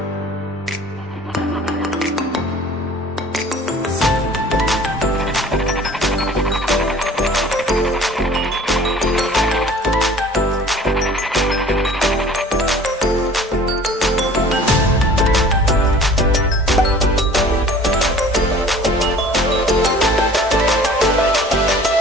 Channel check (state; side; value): normal; both; correlation 0.48